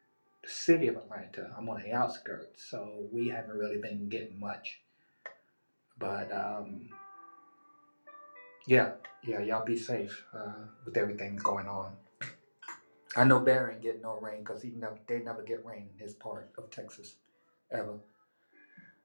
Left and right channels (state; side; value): inverted; both; correlation -1.00